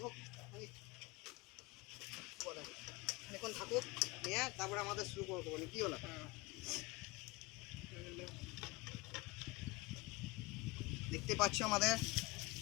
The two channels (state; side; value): quieter; right; 23.6 dB